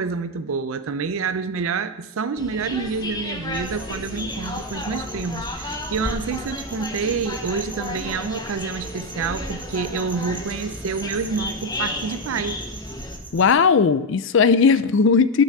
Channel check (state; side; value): normal; both; correlation 0.06